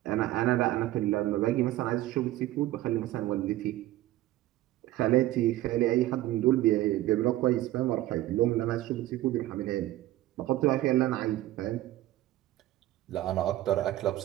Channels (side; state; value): left; quieter; 15.4 dB